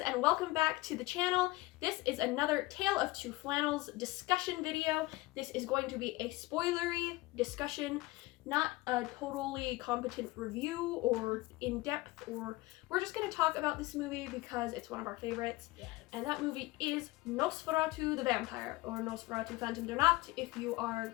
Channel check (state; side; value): quieter; right; 20.4 dB